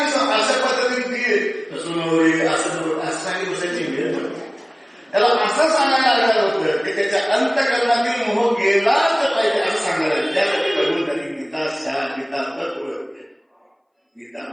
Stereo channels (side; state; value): both; identical; correlation 1.00